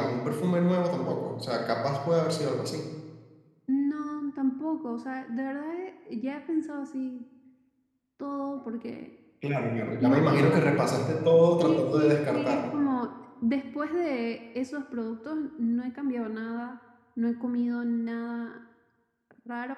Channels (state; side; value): identical; both; correlation 1.00